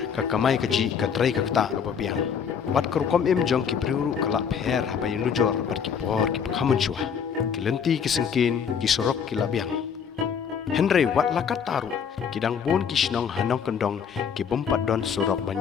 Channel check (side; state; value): right; quieter; 7.1 dB